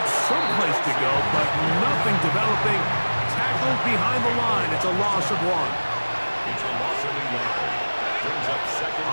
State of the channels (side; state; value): both; inverted; correlation -1.00